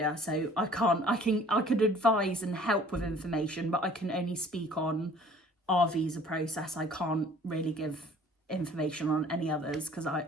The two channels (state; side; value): normal; both; correlation 0.52